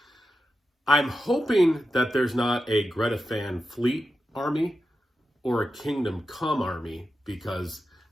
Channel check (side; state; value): both; normal; correlation 0.90